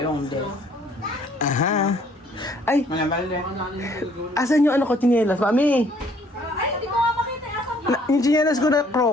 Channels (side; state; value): both; normal; correlation 0.61